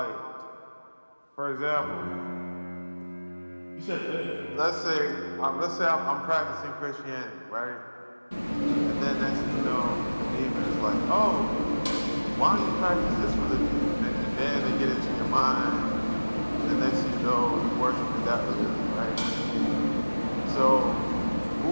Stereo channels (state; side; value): inverted; both; correlation -1.00